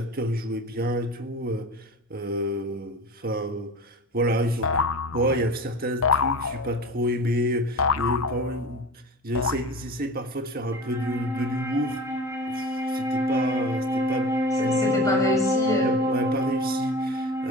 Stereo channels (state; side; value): normal; both; correlation 0.35